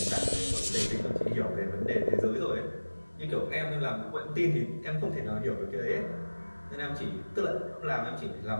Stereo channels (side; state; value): both; inverted; correlation -1.00